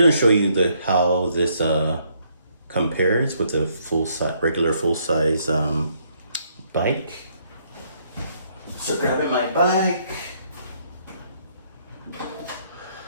show you how this compares with the regular full-size bike. So grabbing my bike.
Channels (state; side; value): inverted; both; correlation -0.70